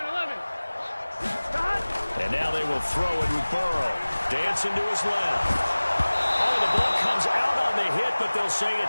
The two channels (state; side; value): inverted; both; correlation -1.00